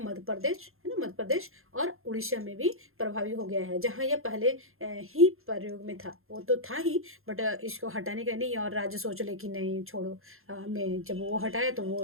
मध्य प्रदेश, है ना, मध्य प्रदेश और उड़ीसा में भी प्रभावी हो गया है। जहाँ यह पहले ही प्रयोग में था, वो तो था ही, बट इसको हटाने का नहीं, और राज्य सोच ले कि नहीं छोड़ो, हमें जब वो हटाया तो वो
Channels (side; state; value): left; late; 0.61 ms